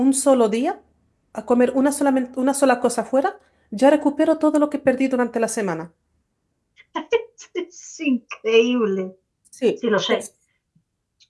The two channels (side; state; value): both; identical; correlation 1.00